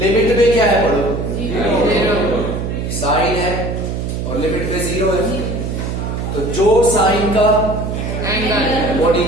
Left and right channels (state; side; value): noise; right; hum, 3 dB below the sound